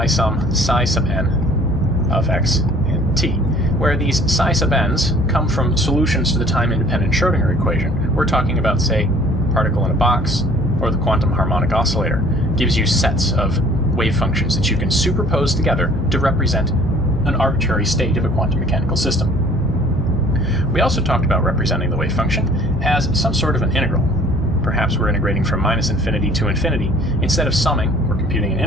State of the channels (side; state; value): both; normal; correlation 0.53